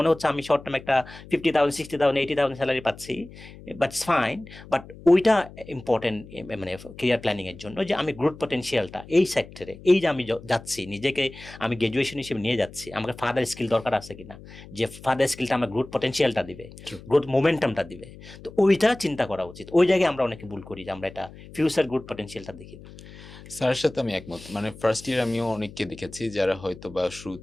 হচ্ছে আমি শর্ট টার্ম একটা 50,000 60,000 80,000 স্যালারি পাচ্ছি, বাট ইটস ফাইন, বাট ওইটা ইম্পর্টেন্ট মানে কেরিয়ার প্ল্যানিংয়ের জন্য, যে আমি গ্রোথ পটেনশিয়ালটা এই সেক্টরে, এই যে আমি যাচ্ছি, নিজেকে আমি গ্র্যাজুয়েশন হিসেবে নিয়ে যাচ্ছি, আমাকে ফার্দার স্কিল দরকার আছে কিনা, যে ফার্দার স্কিলটা আমার গ্রোথ পটেনশিয়ালটা দিবে, গ্রোথ মোমেন্টামটা দিবে। তো ওইটা চিন্তা করা উচিত। ওই জায়গায় আমরা অনেকে ভুল করি যে আমরা এটা ফিউচার গ্রোথ পটেনশিয়ালটা দেখি না। স্যারের সাথে আমি একমত। মানে ফার্স্ট ইয়ার আমিও অনেককে দেখেছি যারা হয়তো বা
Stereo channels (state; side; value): noise; left; hum, 18 dB below the sound